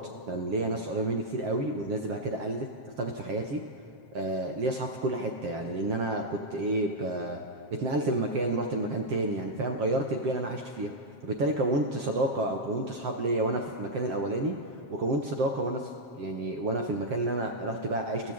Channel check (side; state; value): left; late; 7.5 ms